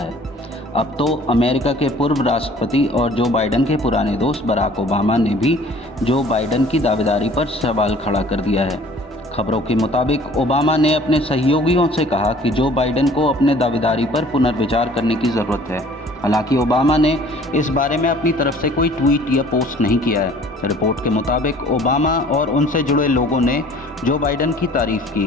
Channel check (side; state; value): both; normal; correlation 0.52